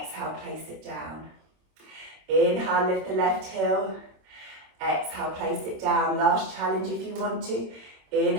place it down. Inhale, lift the left heel. Exhale, place it down. Last challenge if you want to.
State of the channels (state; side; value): late; left; 26 ms